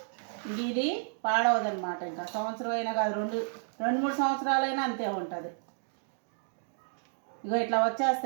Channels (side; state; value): left; silent; digital silence